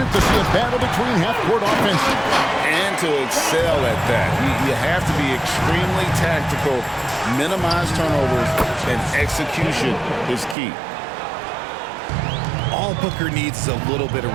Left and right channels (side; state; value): left; drops out; at 10.6 s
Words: to see a battle between half-court offenses? And to excel at that. You have to be extremely tactical, minimize turnovers, and execution is key. All Booker needs is a little bit